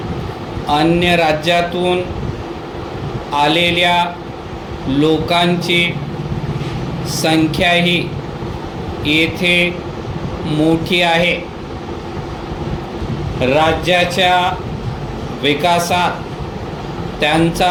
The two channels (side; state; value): both; identical; correlation 1.00